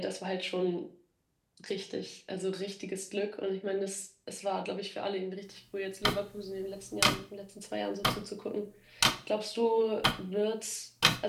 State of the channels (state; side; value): identical; both; correlation 1.00